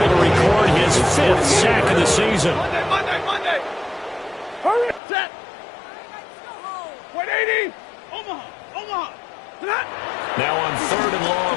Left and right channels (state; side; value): drops out; right; at 5.0 s